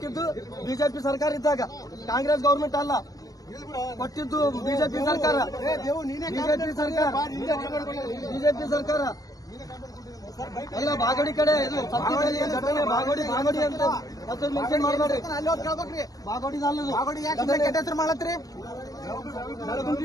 ಬಿಜೆಪಿ ಸರ್ಕಾರ ಇದ್ದಾಗ, ಕಾಂಗ್ರೆಸ್ ಗೌರ್ಮೆಂಟ್ ಅಲ್ಲ ಕೊಟ್ಟಿದ್ದು, ಬಿಜೆಪಿ ಸರ್ಕಾರ ಎಲ್ಲ ಬಾಗೋಡಿ ಕಡೆ ಇದು ಸತ್ಯದಲ್ಲಿ ಘಟನೆ ಬಾಗೋಡಿ ಅಂತ ಮತ್ತೆ ಮೆನ್ಷನ್ ಮಾಡಬೇಡ್ರಿ. ಬಾಗೋಡಿ ಹೆಸರು ಮಾಡತ್ರಿ.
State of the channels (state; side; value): late; right; 0.17 ms